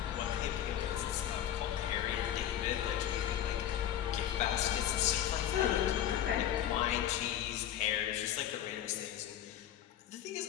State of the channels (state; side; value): quieter; right; 11.1 dB